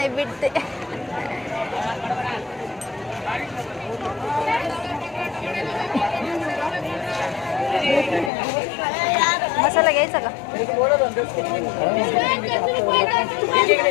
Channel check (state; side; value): drops out; right; at 8.3 s